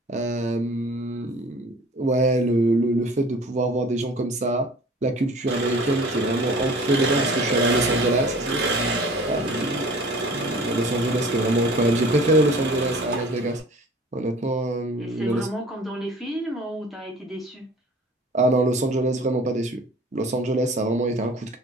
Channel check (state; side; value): normal; both; correlation 0.46